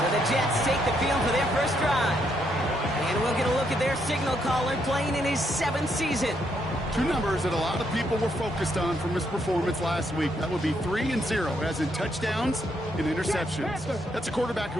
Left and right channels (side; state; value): both; normal; correlation 0.75